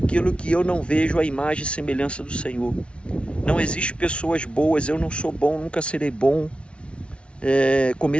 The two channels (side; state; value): right; late; 0.059 ms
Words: que eu não vejo a imagem e semelhança do Senhor. Não existe pessoas boas, eu não sou bom, nunca serei bom.